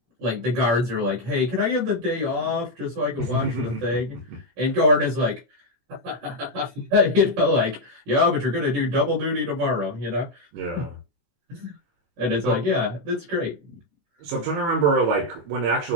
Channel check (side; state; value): left; late; 18 ms